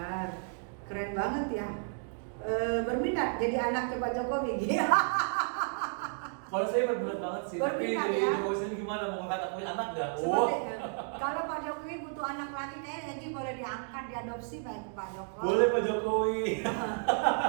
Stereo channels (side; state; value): left; silent; 56 dB below the other